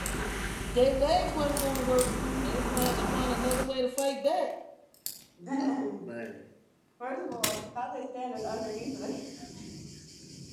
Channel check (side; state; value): both; identical; correlation 1.00